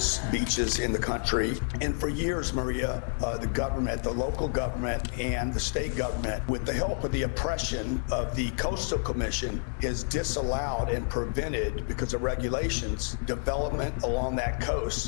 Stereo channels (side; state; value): right; silent; digital silence